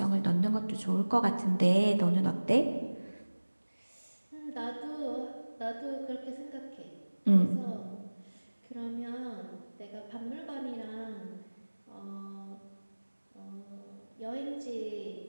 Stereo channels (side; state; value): both; inverted; correlation -1.00